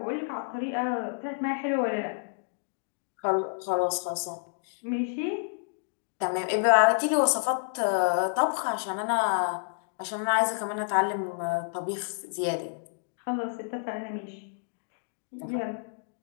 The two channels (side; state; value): right; silent; digital silence